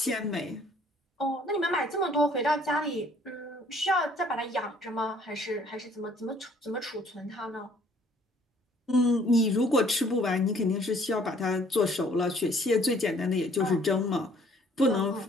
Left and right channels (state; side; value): normal; both; correlation 0.60